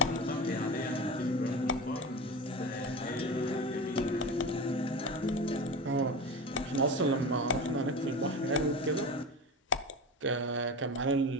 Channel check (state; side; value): normal; both; correlation 0.27